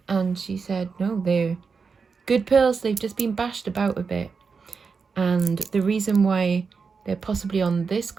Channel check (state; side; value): quieter; left; 5.2 dB